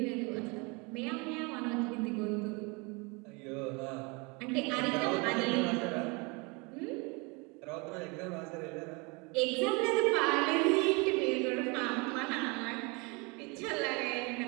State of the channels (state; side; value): quieter; left; 29.2 dB